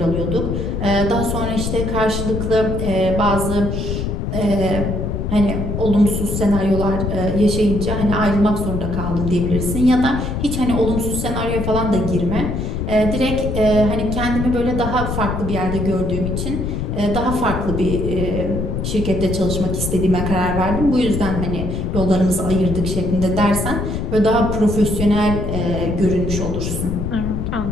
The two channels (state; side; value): noise; left; rumble, 2 dB below the sound